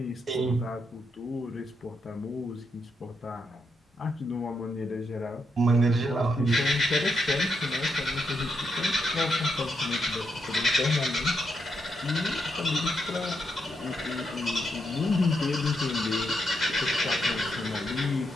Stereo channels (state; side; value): normal; both; correlation 0.81